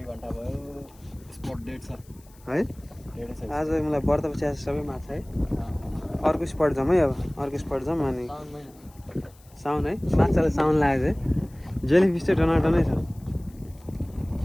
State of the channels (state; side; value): noise; left; hiss, 28 dB below the sound